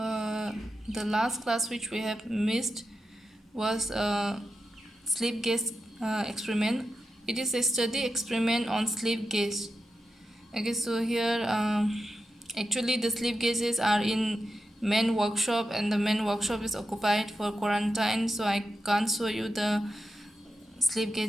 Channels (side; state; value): both; normal; correlation 0.89